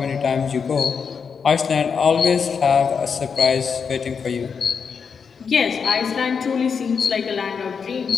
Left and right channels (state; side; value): quieter; right; 6.1 dB